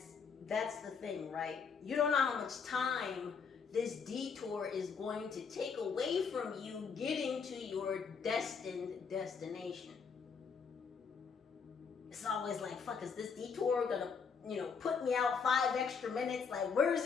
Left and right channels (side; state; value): right; quieter; 5.8 dB